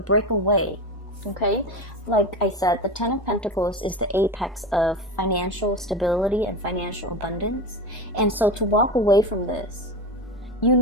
away, okay? Like I said, the Ten of Pentacles is the apex of financial stability and financial abundance. And so to walk away from this, you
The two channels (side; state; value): both; normal; correlation 0.23